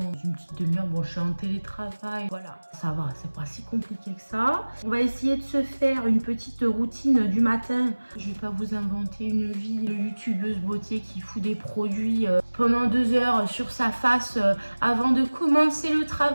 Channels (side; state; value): both; inverted; correlation -1.00